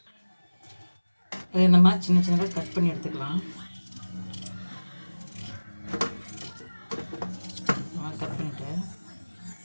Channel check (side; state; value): both; inverted; correlation -1.00